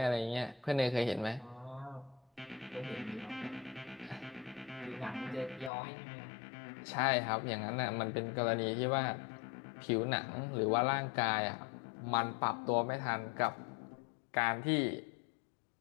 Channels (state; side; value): drops out; right; at 5.7 s